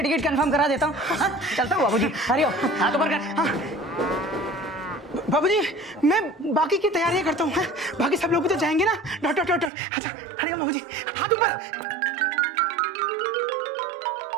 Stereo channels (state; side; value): drops out; left; at 9.7 s